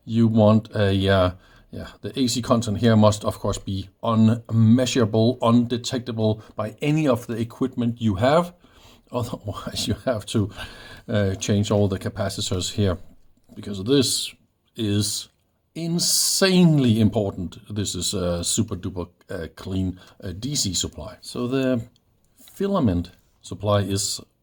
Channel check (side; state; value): both; identical; correlation 1.00